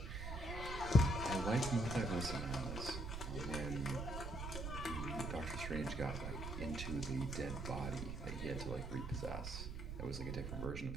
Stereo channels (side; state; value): right; noise; rumble, 5 dB below the sound